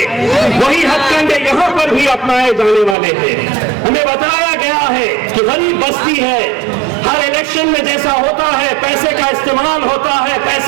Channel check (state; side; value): drops out; left; at 3.0 s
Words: वही हथकंडे यहाँ पर भी अपनाए जाने वाले हैं। हमें बताया गया है कि गरीब बस्ती है, हर इलेक्शन में जैसा होता है पैसे का इस्तेमाल होता है,